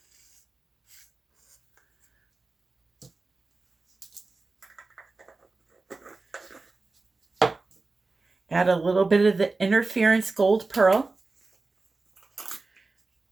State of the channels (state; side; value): quieter; left; 3.6 dB